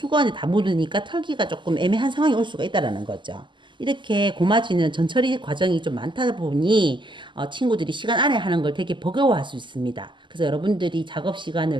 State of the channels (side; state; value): left; late; 0.23 ms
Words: 다 묻으니까 털기가 조금 애매한 상황이 올 수가 있다라는 거죠. 이렇게 고마지는 전처리 과정이 좀 많다 보니 친구들이 시간 안에 하는 걸 되게 버거워할 수 있습니다. 그래서 여러분들이 작업